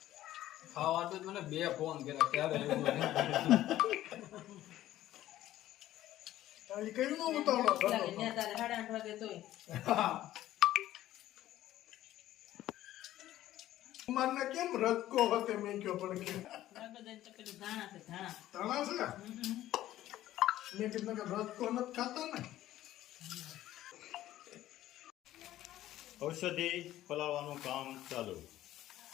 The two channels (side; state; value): right; quieter; 14.0 dB